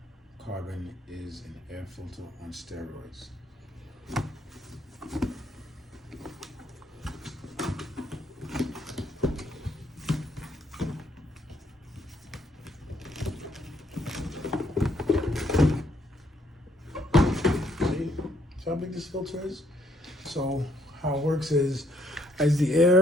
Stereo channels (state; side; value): normal; both; correlation 0.69